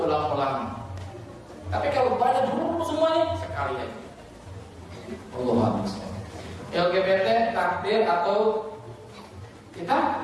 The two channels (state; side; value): identical; both; correlation 1.00